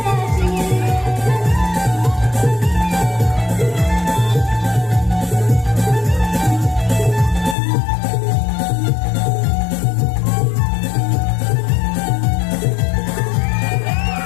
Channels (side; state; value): right; drops out; at 7.6 s